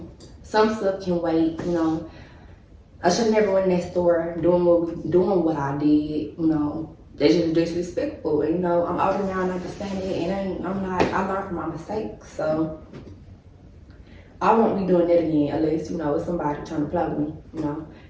some stuff can wait. You know, I should never went in that store doing what I did. You know, that's just disrespectful. And, you know, I'm older now and I understand it, and I learned from my mistakes. So I won't be doing that again unless, you know, it's somebody trying to play with me. You know,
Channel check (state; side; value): identical; both; correlation 1.00